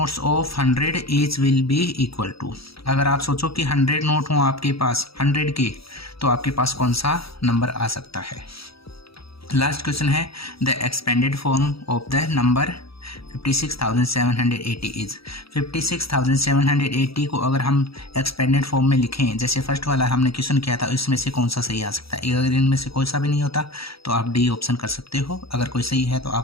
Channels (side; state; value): right; late; 0.76 ms